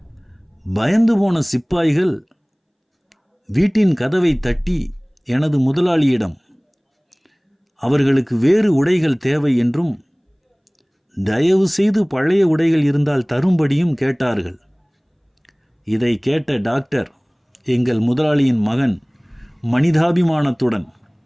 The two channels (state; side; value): identical; both; correlation 1.00